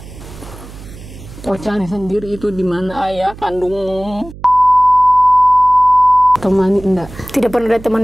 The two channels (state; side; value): noise; right; hum, 17 dB below the sound